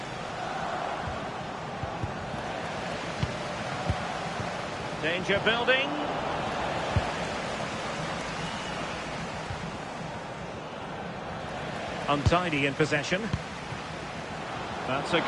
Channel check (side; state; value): both; identical; correlation 1.00